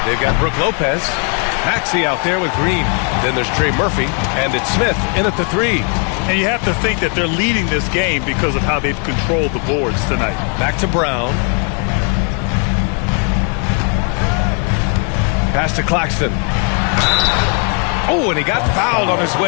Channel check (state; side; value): quieter; right; 39.1 dB